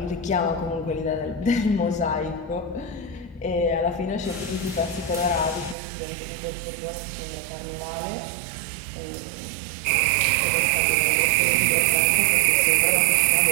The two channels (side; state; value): left; drops out; at 5.8 s